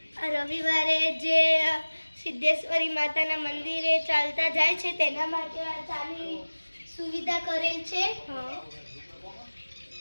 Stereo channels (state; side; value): inverted; both; correlation -1.00